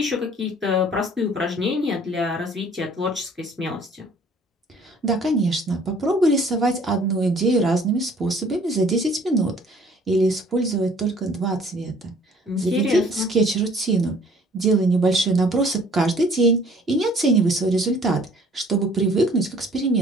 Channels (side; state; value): both; normal; correlation 0.55